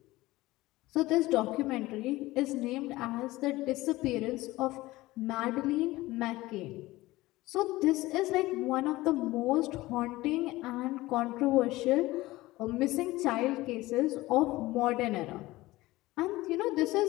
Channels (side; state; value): right; quieter; 18.7 dB